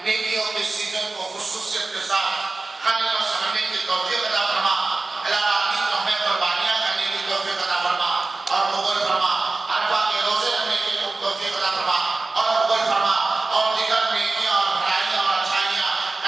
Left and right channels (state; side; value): quieter; left; 3.5 dB